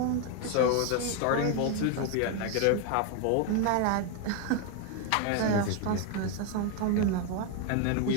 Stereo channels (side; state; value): both; different; correlation 0.01